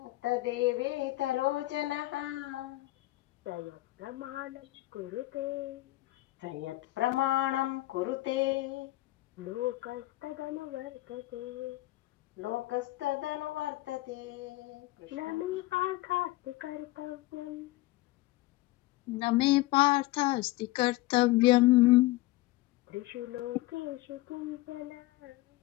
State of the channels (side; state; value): right; quieter; 18.7 dB